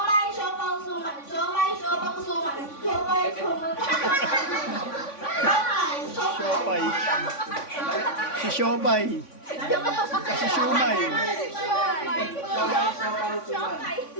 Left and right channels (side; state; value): right; late; 3.5 ms